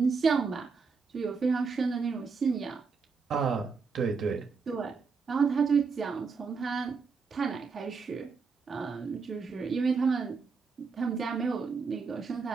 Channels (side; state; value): left; quieter; 5.1 dB